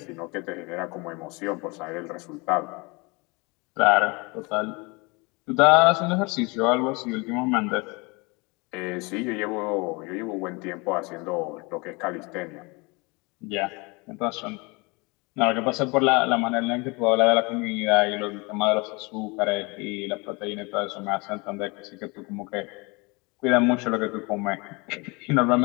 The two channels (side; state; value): right; quieter; 27.5 dB